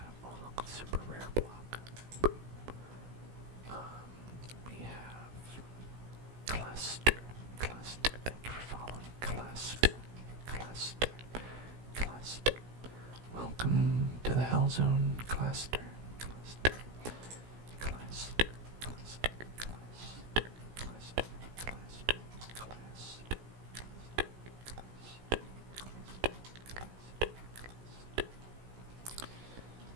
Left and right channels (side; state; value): left; late; 17 ms